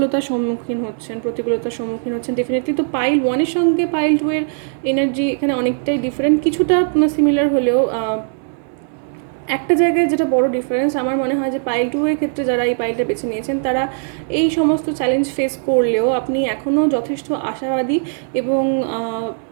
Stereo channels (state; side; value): silent; left; 64 dB below the other